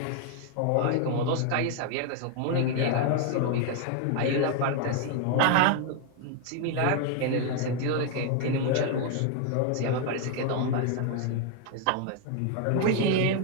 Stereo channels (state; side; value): different; both; correlation 0.00